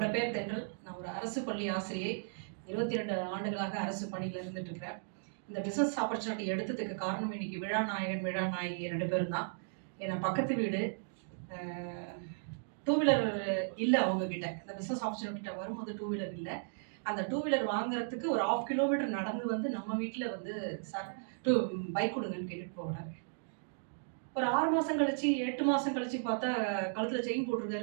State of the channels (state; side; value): silent; left; digital silence